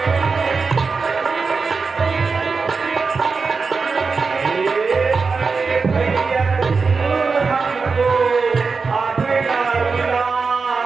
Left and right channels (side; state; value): left; quieter; 4.7 dB